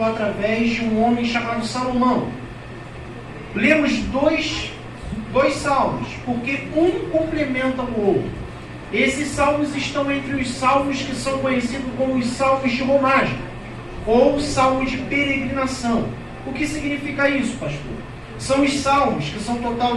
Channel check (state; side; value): identical; both; correlation 1.00